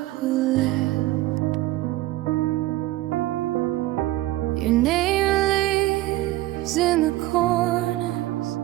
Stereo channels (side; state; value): left; quieter; 17.0 dB